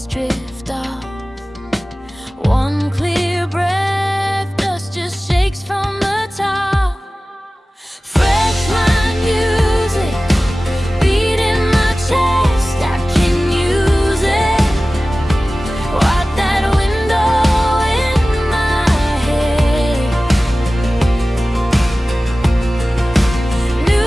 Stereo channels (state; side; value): normal; both; correlation 0.97